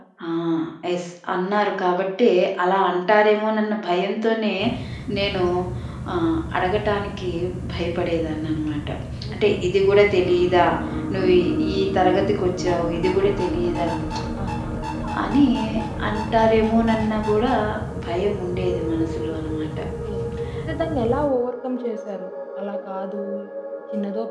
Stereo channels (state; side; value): identical; both; correlation 1.00